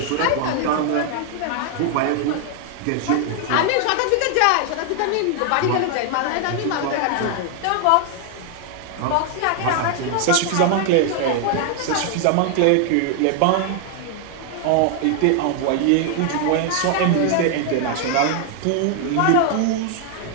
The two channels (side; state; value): both; different; correlation 0.00